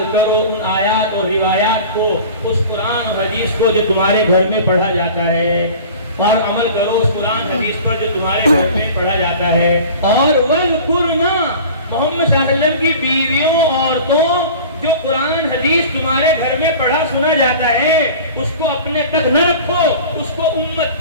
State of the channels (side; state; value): both; inverted; correlation -0.40